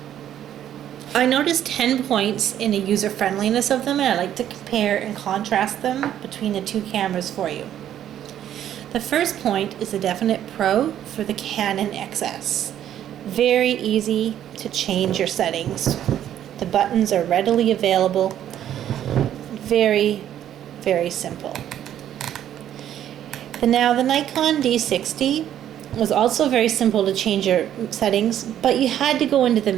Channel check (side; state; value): left; quieter; 10.9 dB